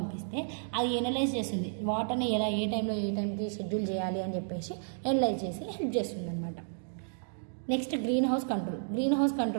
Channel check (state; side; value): silent; left; digital silence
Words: అది ఎనలైజ్ చేస్తుంది వాటర్ని ఏ టైంకి షెడ్యూల్ చేయాలి అని చెప్పేసి ఎనలైజ్ చేసి హెల్ప్ చేస్తుంది అనమాట. నెక్స్ట్ గ్రీన్ హౌస్